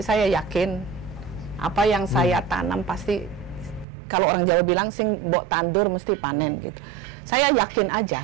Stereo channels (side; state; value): left; drops out; at 3.9 s